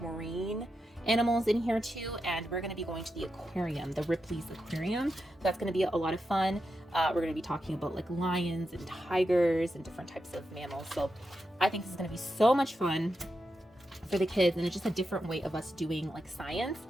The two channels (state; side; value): normal; both; correlation 0.87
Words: marine animals in here too, and we're going to be going to the aquarium, the Ripley's Aquarium. That's going to be a lot of fun. We're going to be talking about like lions and tigers and different types of mammals. So I think this is going to be so much fun for the kids, and it's just a different way of us doing like science.